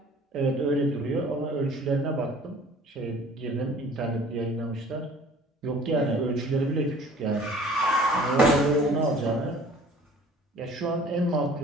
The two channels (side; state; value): both; normal; correlation 0.50